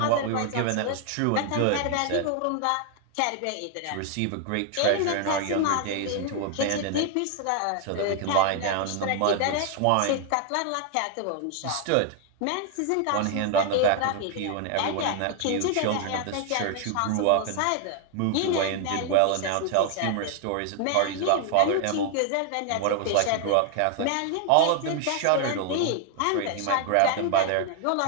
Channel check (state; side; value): different; both; correlation 0.00